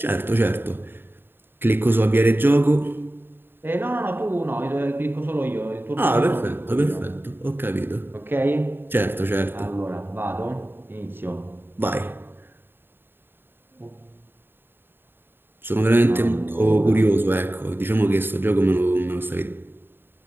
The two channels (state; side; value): late; left; 0.10 ms